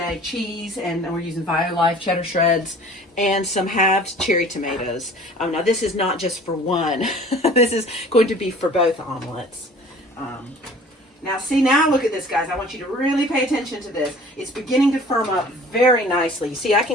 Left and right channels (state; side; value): normal; both; correlation 0.48